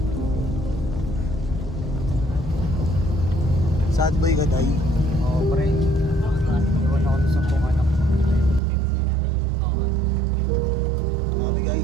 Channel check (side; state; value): left; drops out; at 8.6 s